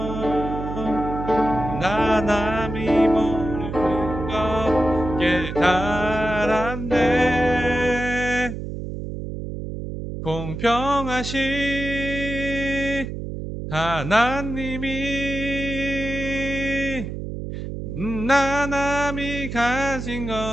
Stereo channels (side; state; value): right; noise; hum, 7 dB below the sound